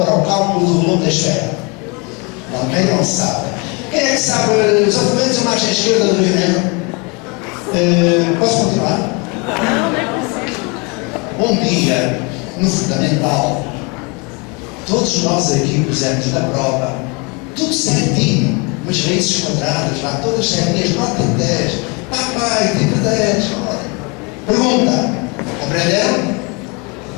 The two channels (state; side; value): quieter; right; 30.2 dB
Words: para o cálculo do volume da esfera? Também não sabe. Quem é que sabe os argumentos da margem esquerda do Rio Negro? Posso continuar? Um dia, no fundamental, todos nós aqui pusemos na prova, tudo certinho, umas raízes quadradas lá, todas certinhas, nota 10. Papai, tipo 10. Olha. Pergunta: aprenderam?